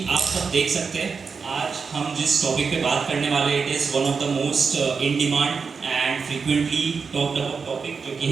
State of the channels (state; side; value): quieter; left; 5.3 dB